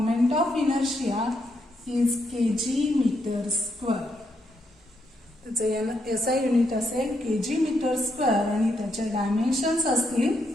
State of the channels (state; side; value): normal; both; correlation 0.78